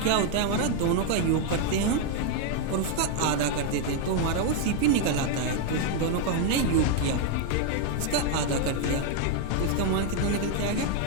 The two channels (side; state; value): both; different; correlation 0.01